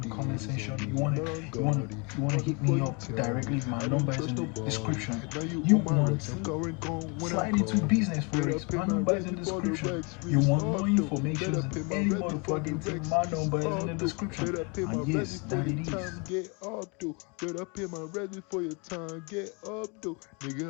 comment section. You wanna hit me up directly. My number is in the description. You want to slide into business forex? My number is in the description. You want more information than any motherfucking thing? My number is in the description. And yes, that it is. Get up, though. Better pay my ready for your time. Get up, though.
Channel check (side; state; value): right; quieter; 32.0 dB